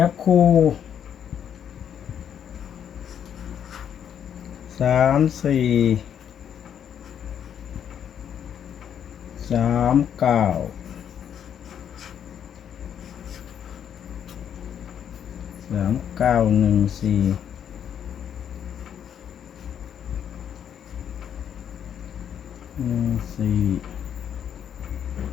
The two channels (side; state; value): right; quieter; 8.9 dB